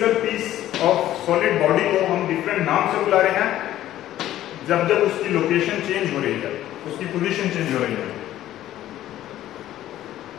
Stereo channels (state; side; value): quieter; right; 13.3 dB